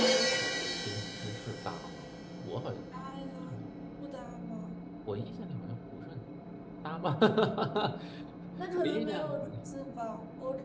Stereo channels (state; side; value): identical; both; correlation 1.00